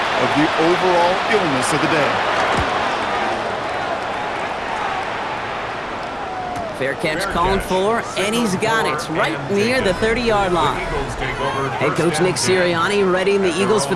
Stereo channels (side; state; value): both; identical; correlation 1.00